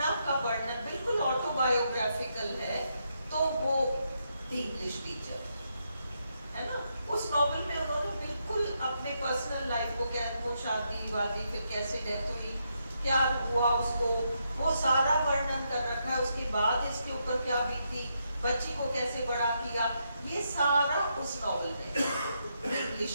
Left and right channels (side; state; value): both; inverted; correlation -0.80